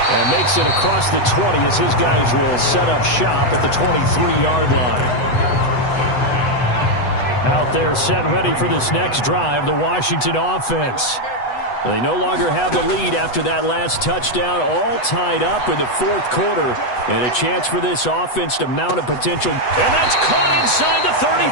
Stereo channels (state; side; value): late; right; 8.1 ms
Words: And makes it across the 20 as his guys will set up shop at the 23-yard line. Out there set and ready for this next drive, the Washington offense. They no longer have the lead after that last touchdown, all tied up in the 4th quarter. And a chance for this offense to mount a potential. And that's caught inside the